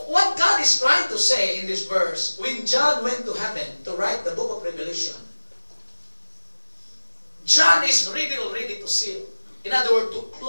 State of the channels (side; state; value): both; inverted; correlation -1.00